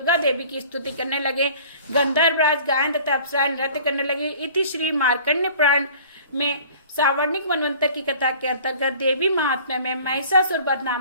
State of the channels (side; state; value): both; inverted; correlation -0.48